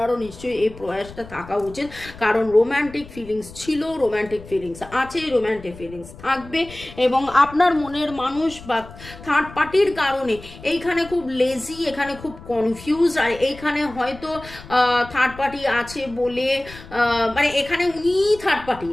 নিশ্চয়ই এই প্রয়াসটা থাকা উচিত। কারণ রোম্যান্টিক ফিলিংস ছিল, রোম্যান্টিক ফিলিংস আছে, রোম্যান্টিক ফিলিংস থাকবে, এবং আপনার মনের মানুষ বা থার্ড পার্টির কারণে এইখানে খুব লেজি, এখানে খুব কনফিউজ, আর এইখানে হয়তো থার্ড পার্টি আছে বলে মানে এখানে উনি থার্ড পার্টি,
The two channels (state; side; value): noise; left; rumble, 17 dB below the sound